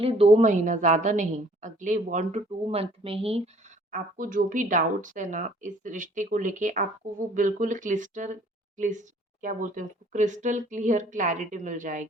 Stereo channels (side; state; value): both; normal; correlation 0.57